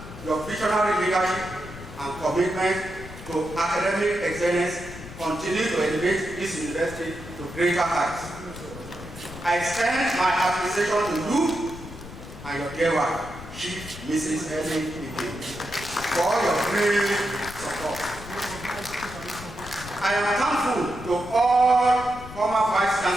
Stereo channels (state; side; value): noise; left; rumble, 14 dB below the sound